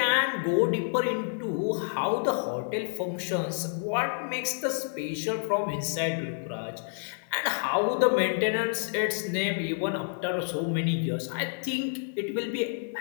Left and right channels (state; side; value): silent; right; digital silence